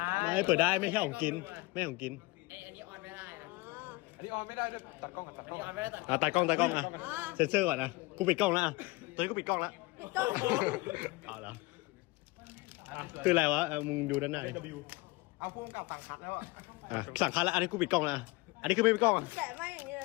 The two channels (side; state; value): right; quieter; 23.1 dB